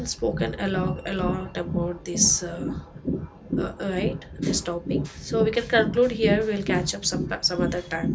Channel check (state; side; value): identical; both; correlation 1.00